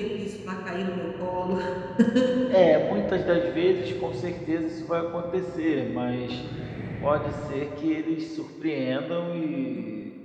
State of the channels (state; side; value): identical; both; correlation 1.00